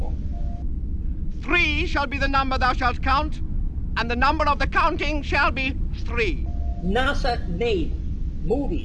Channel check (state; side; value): identical; both; correlation 1.00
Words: 3 shall be the number thou shalt count, and the number of the counting shall be 3. NASA made